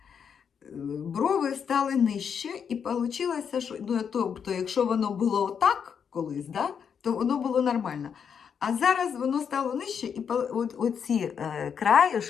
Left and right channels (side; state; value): right; quieter; 7.2 dB